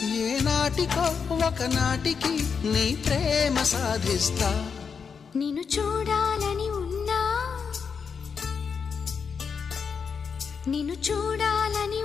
ఏనాటికో ఒకనాటికి నీ ప్రేమ సాధిస్తా. నిన్ను చూడాలని ఉన్నా, నిన్ను చూడాలని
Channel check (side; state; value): right; quieter; 6.0 dB